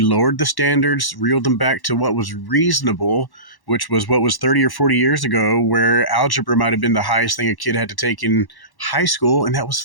the standards, reeled them back to what was reasonable, which was what was 30 or 40 years ago, where algebra might have been the highest thing a kid had to take in high school, and that was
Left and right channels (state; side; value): late; right; 1.1 ms